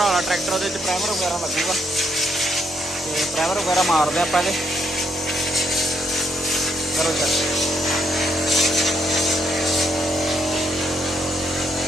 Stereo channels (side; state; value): both; normal; correlation 0.74